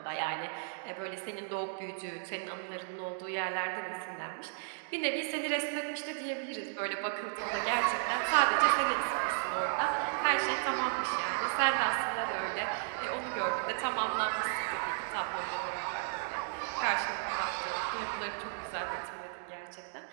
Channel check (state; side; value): silent; left; digital silence